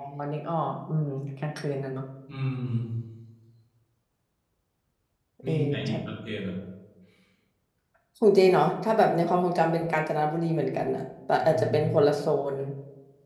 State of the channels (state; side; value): identical; both; correlation 1.00